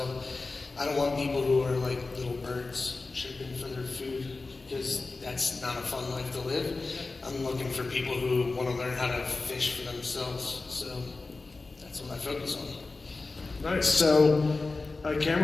I don't want people who are like little birds chirping for their food, because that's not a fun life to live. I'm looking for people who want to learn how to fish for themselves. So that's what I focus on. Nice. So,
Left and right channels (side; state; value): right; quieter; 3.7 dB